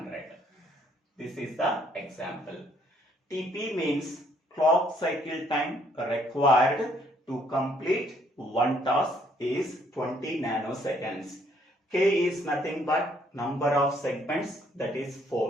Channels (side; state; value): both; normal; correlation 0.67